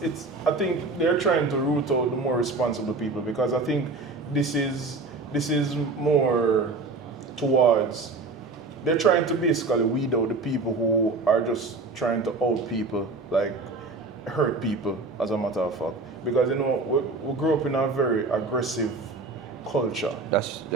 I think they're trying to root out the more responsible people, because I think this is more towards. They're trying to basically weed out the people who are just trying to out people, like hurt people, as a matter of fact. Because, you know, we grew up in a very aggressive culture.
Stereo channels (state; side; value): quieter; left; 3.6 dB